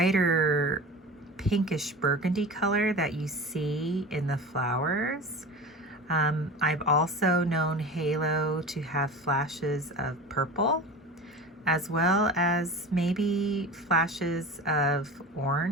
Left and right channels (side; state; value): both; normal; correlation 0.33